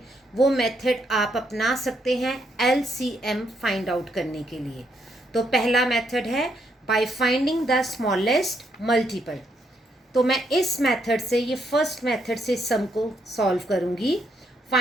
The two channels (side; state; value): both; normal; correlation 0.75